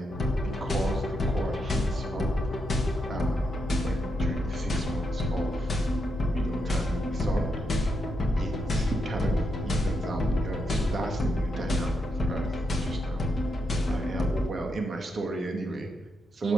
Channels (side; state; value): both; normal; correlation 0.83